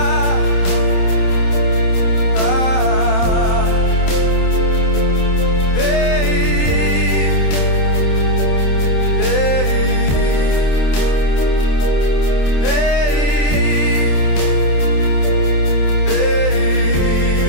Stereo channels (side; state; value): right; late; 27 ms